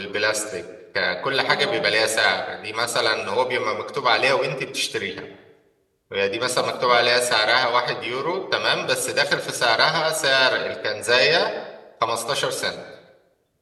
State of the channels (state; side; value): identical; both; correlation 1.00